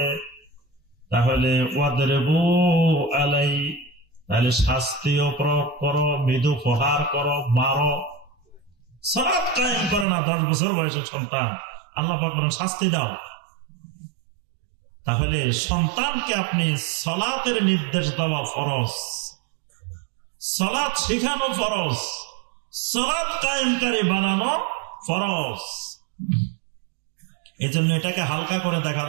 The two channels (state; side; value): drops out; left; at 10.1 s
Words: তাহলে ওয়াদরিবু আলাই, তাহলে শাস্তিও প্রয়োগ করো, মৃদু প্রহার করো, মারো। সালাত কায়েম করে না 10 বছর বয়সের সন্তান, আল্লাহ পাক বলেন শাস্তি দাও। তাহলে সন্তানকে আপনি সালাতের নির্দেশ দেওয়া ফরজ, সালাত শেখানো ফরজ, সালাত কায়েমকারী বানানো ফরজ। এই জন্য এটাকে হালকা করে দেখা